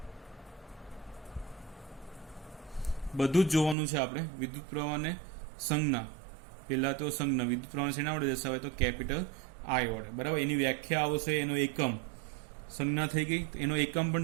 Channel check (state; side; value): drops out; left; at 3.8 s